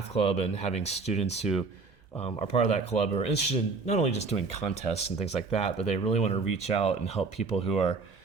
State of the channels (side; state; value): left; quieter; 4.4 dB